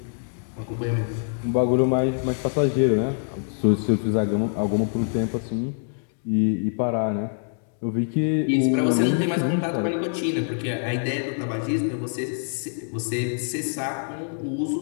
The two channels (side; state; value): right; silent; digital silence